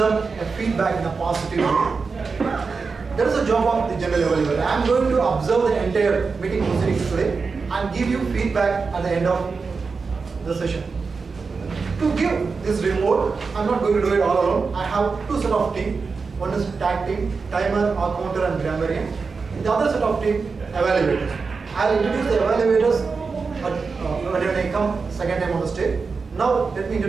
a feedback in a positive way. That is the job of the general evaluator. I am going to observe the entire meeting proceedings today and give you feedback at the end of the session. To give this report, I am not going to do it all alone. I have two set of team. One is tag team, timer, counter and grammarian. The other set of team, evaluators. I will introduce the evaluators when I come second time on the stage. Now let me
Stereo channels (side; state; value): left; quieter; 4.7 dB